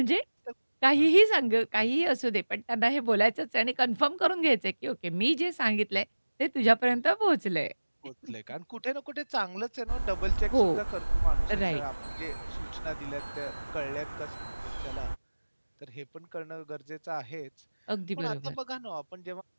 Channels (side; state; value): both; inverted; correlation -1.00